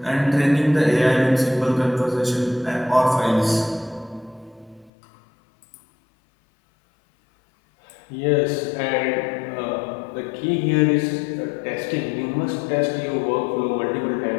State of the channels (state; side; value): drops out; right; at 4.9 s